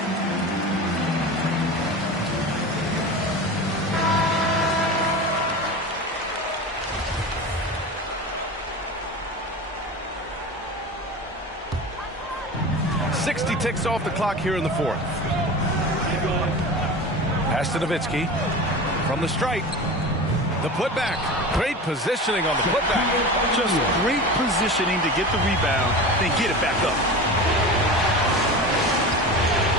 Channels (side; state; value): both; normal; correlation 0.31